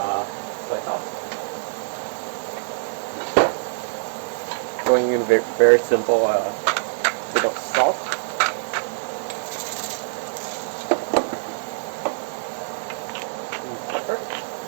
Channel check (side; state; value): left; silent; 62 dB below the other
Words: soy sauce. Going in very simple bit of salt. And pepper.